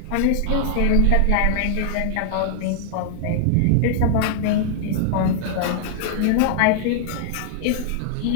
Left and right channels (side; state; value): both; different; correlation -0.01